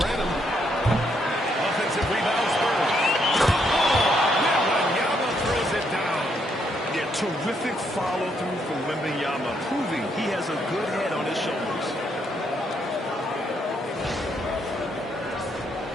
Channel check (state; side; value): normal; both; correlation 0.74